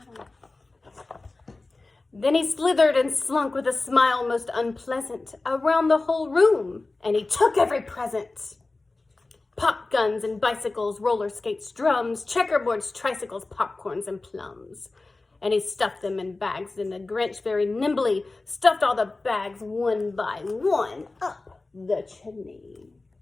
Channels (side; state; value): right; quieter; 3.3 dB